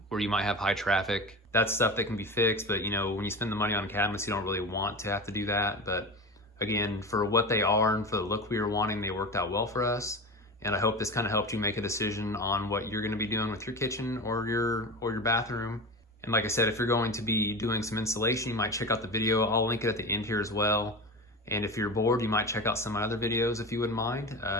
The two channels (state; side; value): normal; both; correlation 0.27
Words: you might have high traffic. That's stuff that can be fixed, but you know, when you spend the money on cabinets, you don't really want to have to do that. But again, for what they are and for the look we were wanting, they worked out well for us. And I hope this kind of helped you make a decision on what you're going to be doing with your kitchen or your bathroom. And like I said, if you're going to be doing some installation, you might check out the video. I'll link it at the end here as well. And if you're bored, you might check out some of my other videos if you wouldn't mind.